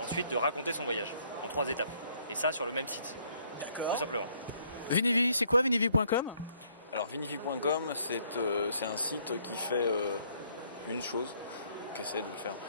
de raconter son voyage en 3 étapes. Et ça sur le même site, tout simplement. Vinivi, c'est quoi Vinivi.com? Alors Vinivi.com, c'est un site qui fait une chose, qui essaie de le faire.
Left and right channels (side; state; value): both; inverted; correlation -0.66